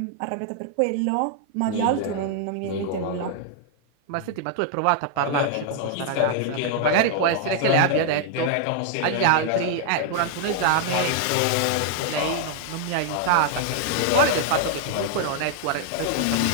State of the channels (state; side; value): different; both; correlation 0.00